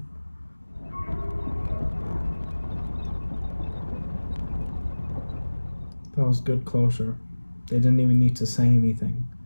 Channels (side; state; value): both; inverted; correlation -1.00